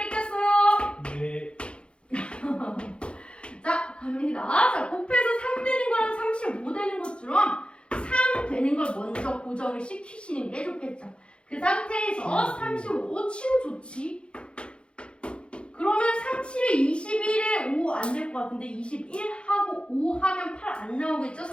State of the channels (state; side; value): late; right; 0.057 ms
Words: 네. 자, 갑니다. 자, 곱해서 3 되는 거랑 35 되는 것처럼 3 되는 걸 먼저 고정을 시키시는 게 좋겠죠. 그 상태에서 35 치우 좋지. 그러면 37에 21에 5 안 될 것 같은데 21하고 5 하면 8 안 나오겠죠?